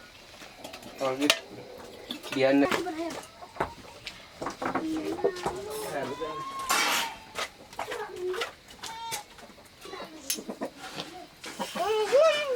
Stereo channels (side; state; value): both; identical; correlation 1.00